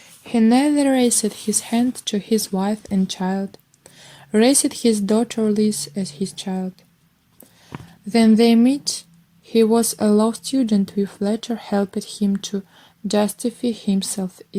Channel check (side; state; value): both; identical; correlation 1.00